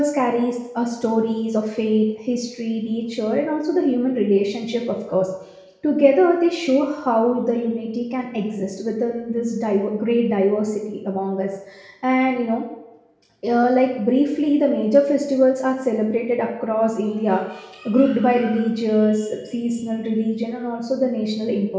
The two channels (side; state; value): both; identical; correlation 1.00